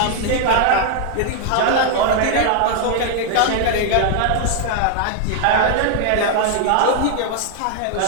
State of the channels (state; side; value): different; both; correlation 0.00